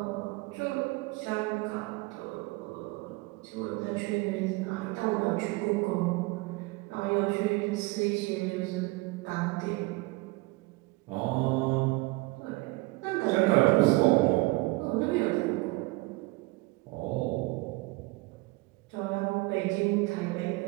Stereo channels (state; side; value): quieter; left; 23.8 dB